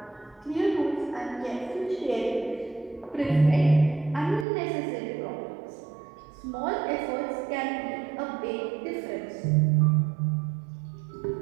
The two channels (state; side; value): drops out; left; at 4.5 s